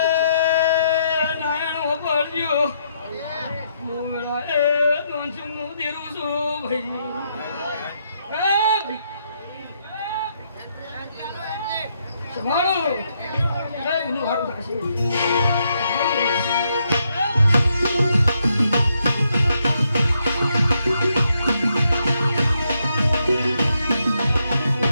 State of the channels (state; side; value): inverted; both; correlation -0.77